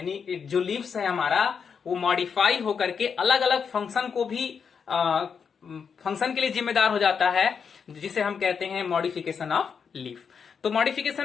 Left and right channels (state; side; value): quieter; right; 6.4 dB